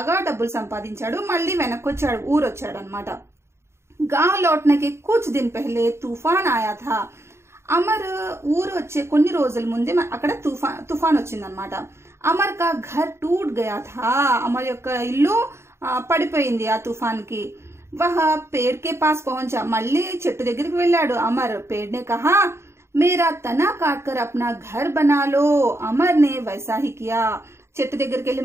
డబ్బులు సంపాదించాడు, మళ్ళీ వెనక్కి వచ్చాడు, ఊరు వచ్చాడు అనమాట। గావ్ లౌట్నే కే కుచ్ దిన్ పహలే తూఫాన్ ఆయా థా, అమర్ ఊరు వచ్చే కొన్ని రోజుల ముందే అక్కడ తుఫాన్ వచ్చిందనమాట। అమర్ కా ఘర్ టూట్ గయా థా, అమర్ యొక్క ఇల్లు పడిపోయింది ఆ తుఫాన్ కి। వహ పేడ్ కే పాస్ పహుంచా, మళ్ళీ చెట్టు దగ్గరికి వెళ్ళాడు అమర్। పేడ్ నే కహా మేరా తనా కాట్ కర్ అప్నా ఘర్ బనా లో, అమర్ నే వైసా హీ కియా। చెట్టు దగ్గరికి వెళ్ళి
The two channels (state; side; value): late; left; 0.13 ms